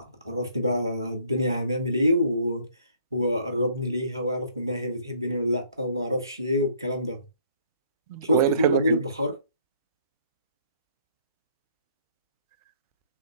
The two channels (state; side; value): inverted; both; correlation -0.62